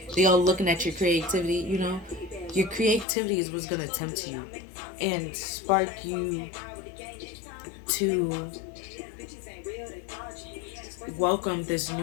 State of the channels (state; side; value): drops out; right; at 3.1 s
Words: looking at your creativity. Your creativity is what's gonna tempt you and spark you to welcome this